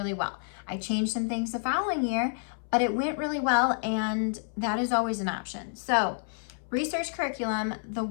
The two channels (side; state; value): right; silent; 58 dB below the other